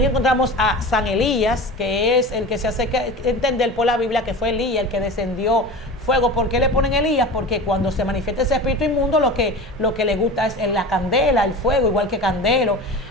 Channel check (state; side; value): normal; both; correlation 0.32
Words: encontramos a San Elías, que es el que se hace entender por la Biblia que fue Elías el que descendió fuego. ¿Por qué le ponen Elías? Porque cuando se manifiesta ese espíritu inmundo, lo que le gusta es la candela, el fuego, igual que Candelo.